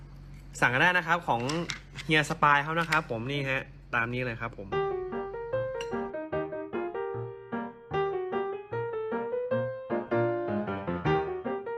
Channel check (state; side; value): identical; both; correlation 1.00